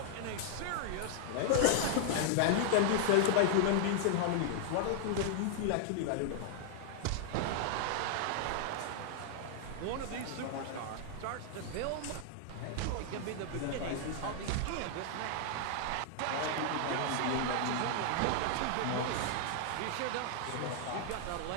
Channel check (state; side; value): different; both; correlation 0.00